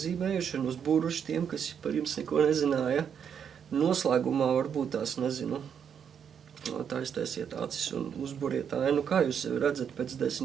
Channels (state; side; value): quieter; left; 7.8 dB